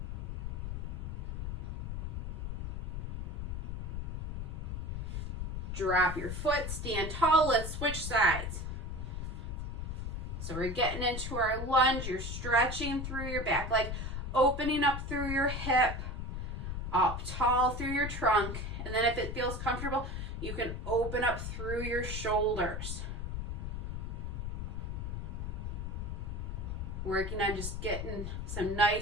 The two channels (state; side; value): noise; left; rumble, 4 dB below the sound